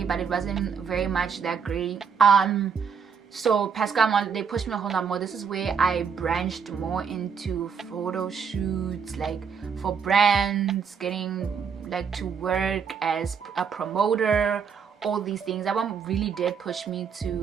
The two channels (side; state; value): left; quieter; 6.5 dB